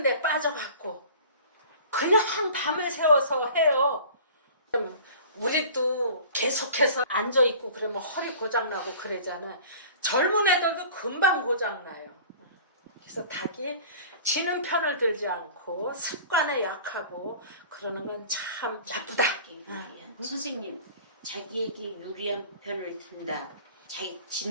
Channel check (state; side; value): inverted; both; correlation -0.44